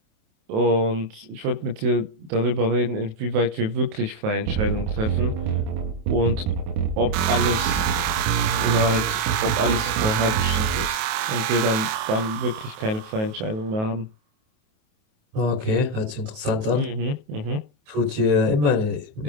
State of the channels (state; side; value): late; left; 28 ms